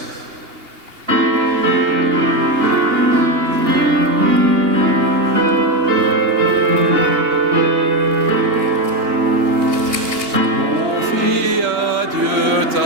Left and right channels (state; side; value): late; left; 2.8 ms